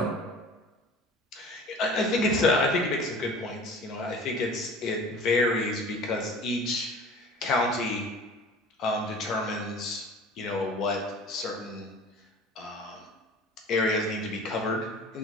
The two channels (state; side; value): normal; both; correlation 0.42